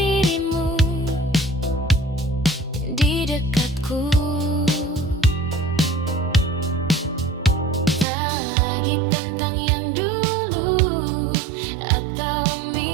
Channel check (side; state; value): left; drops out; at 8.1 s